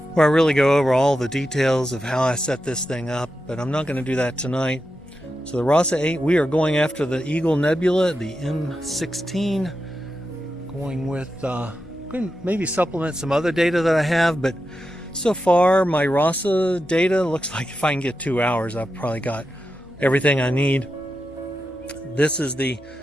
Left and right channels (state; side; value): normal; both; correlation 0.89